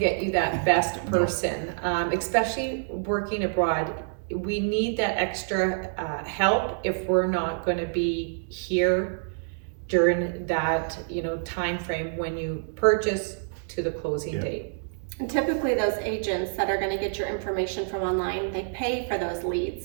you that best person, especially working abroad. We need that extra help if we're not going to be here during that time frame when you purchase to the closing date. And typically those agents that are going to get your information from online, they pay for those leads.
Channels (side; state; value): left; silent; digital silence